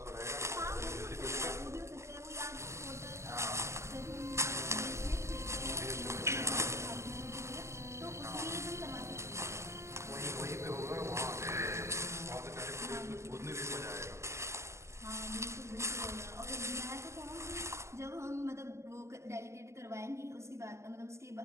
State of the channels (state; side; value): late; left; 0.14 ms